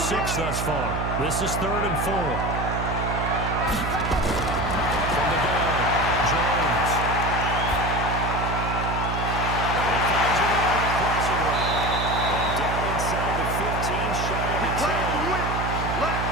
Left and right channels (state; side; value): noise; right; hum, 3 dB below the sound